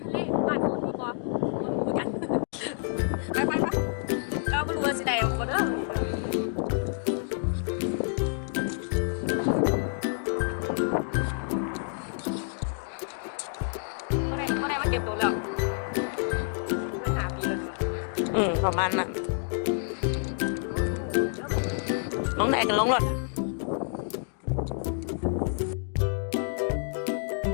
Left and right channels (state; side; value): silent; right; digital silence